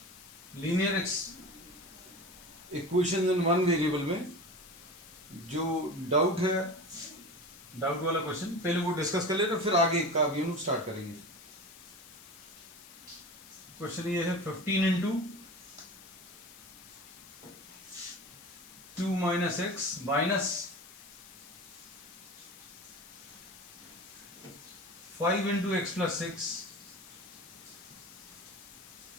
Linear equation in one variable में जो डाउट है, डाउट वाला क्वेश्चन पहले वो डिस्कस कर लेते, फिर आगे का भी हम स्टार्ट करेंगे। क्वेश्चन ये है 15 into 2 minus x minus 5 into x plus 6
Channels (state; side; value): noise; left; hiss, 19 dB below the sound